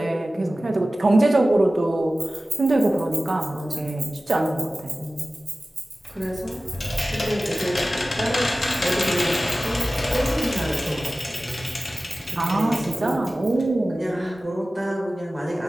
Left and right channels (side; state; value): both; normal; correlation 0.96